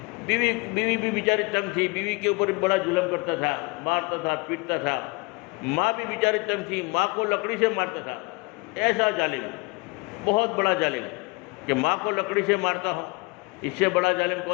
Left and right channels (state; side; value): quieter; right; 27.4 dB